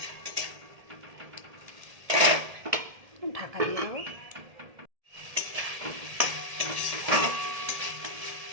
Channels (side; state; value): left; late; 1.7 ms